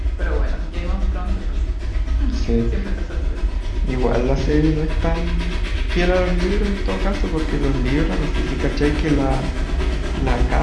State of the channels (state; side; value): identical; both; correlation 1.00